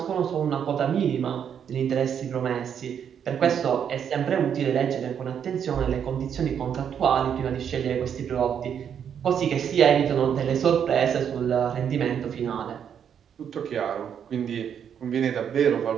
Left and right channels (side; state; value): left; quieter; 8.2 dB